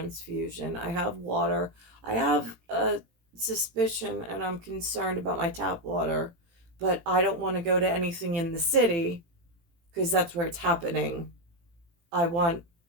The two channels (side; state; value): left; late; 18 ms